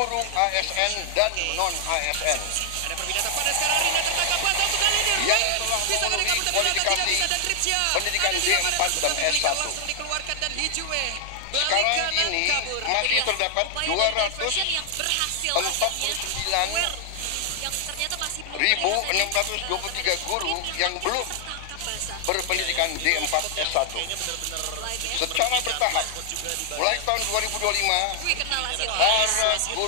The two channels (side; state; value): both; different; correlation 0.00